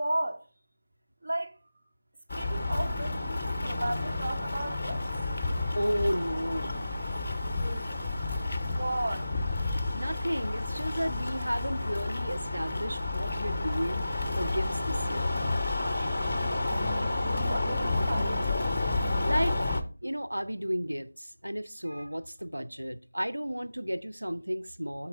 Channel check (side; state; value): both; inverted; correlation -0.93